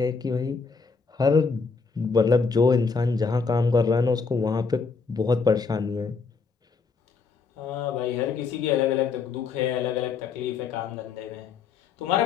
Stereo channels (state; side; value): quieter; right; 5.0 dB